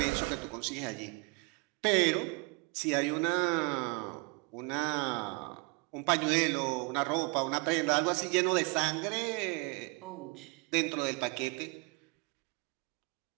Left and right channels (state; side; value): quieter; left; 30.3 dB